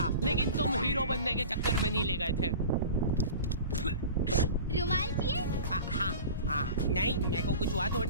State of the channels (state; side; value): inverted; both; correlation -0.36